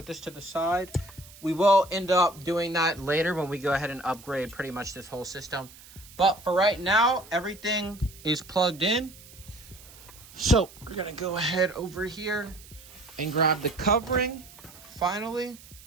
this to the side. We will end up doing that later when we go ahead and upgrade pretty much this whole system. But for right now, everything is plugged in. So we're gonna go ahead over here and grab the covering, finally.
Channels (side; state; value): right; noise; hiss, 20 dB below the sound